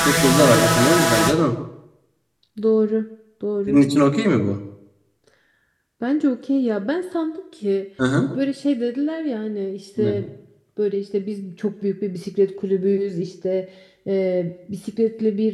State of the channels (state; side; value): identical; both; correlation 1.00